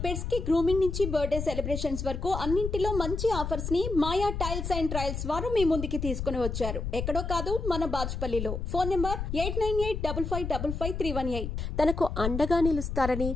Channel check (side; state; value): left; noise; rumble, 4 dB below the sound